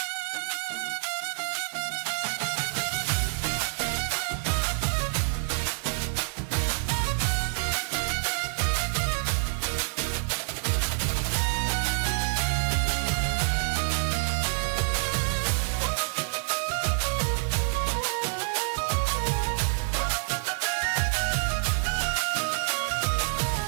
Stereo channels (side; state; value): left; silent; digital silence